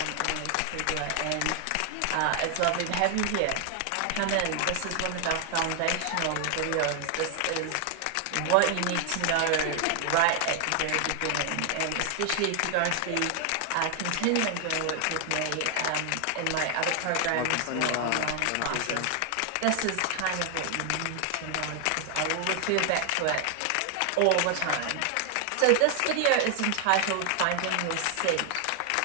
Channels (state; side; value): different; both; correlation 0.00